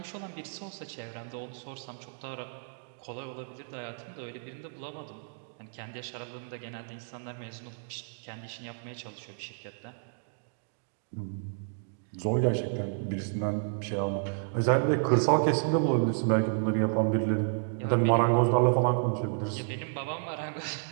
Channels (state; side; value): silent; left; digital silence